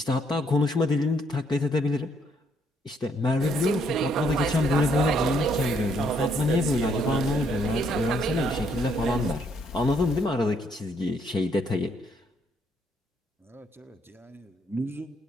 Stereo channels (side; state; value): both; normal; correlation 0.70